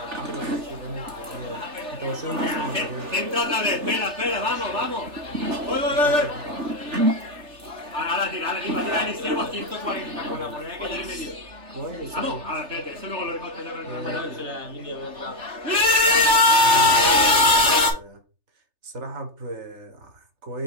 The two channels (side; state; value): left; late; 3.3 ms